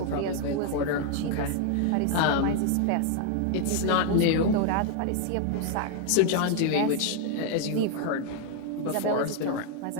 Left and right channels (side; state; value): both; different; correlation 0.00